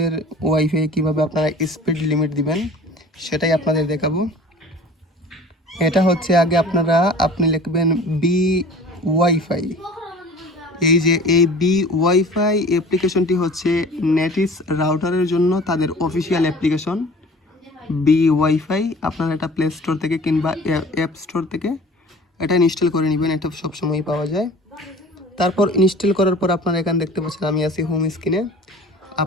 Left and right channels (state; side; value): normal; both; correlation 0.44